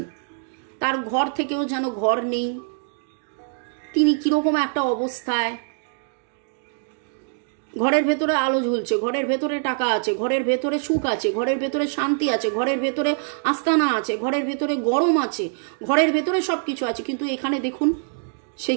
তার ঘর থেকেও যেন ঘর নেই, তিনি কিরকম একটা অবস্থায়। ঘরের ভেতরে আলো ঝুলছে, ঘরের ভেতরে টাকা আছে, ঘরের ভেতরে সুখ আছে, ঘরের ভেতরে শান্তি আছে, ঘরের ভেতরে আস্তানা আছে, ঘরের ভেতরে গরম আছে, ঘরের ভেতরে সব কিছু আছে। কিন্তু এখানে দেখুন,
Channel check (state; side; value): silent; left; digital silence